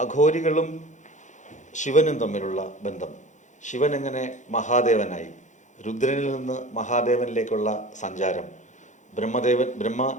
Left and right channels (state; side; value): late; right; 0.35 ms